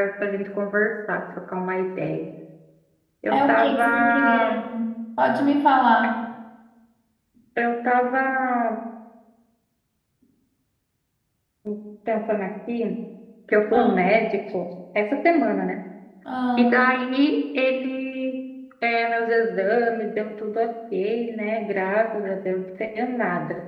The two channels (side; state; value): both; identical; correlation 1.00